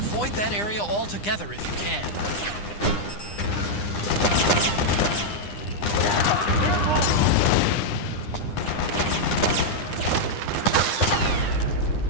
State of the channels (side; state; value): right; late; 9.9 ms